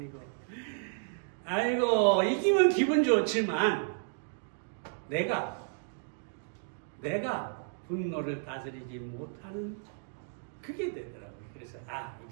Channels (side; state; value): left; silent; digital silence